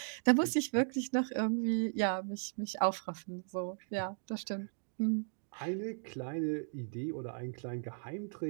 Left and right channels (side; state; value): left; silent; digital silence